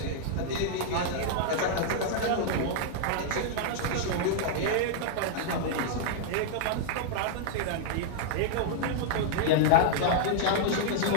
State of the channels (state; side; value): different; both; correlation -0.01